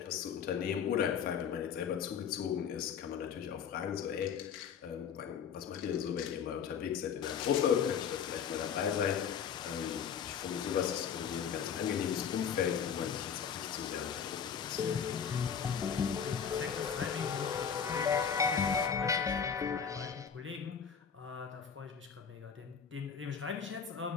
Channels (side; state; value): right; quieter; 7.4 dB